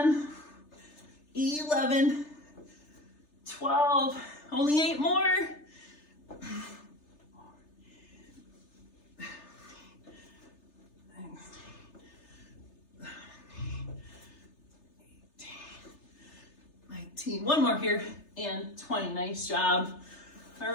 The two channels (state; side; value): late; right; 3.3 ms